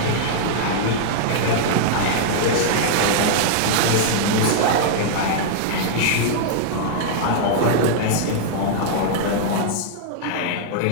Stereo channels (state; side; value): different; both; correlation -0.01